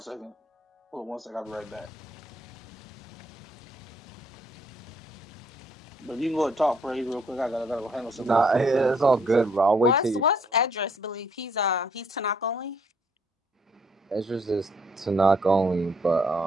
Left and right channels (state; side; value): normal; both; correlation 0.66